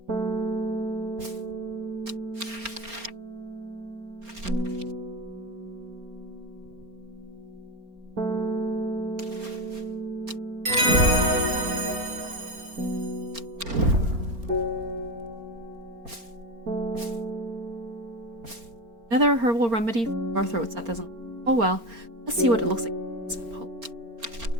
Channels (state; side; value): late; left; 4.3 ms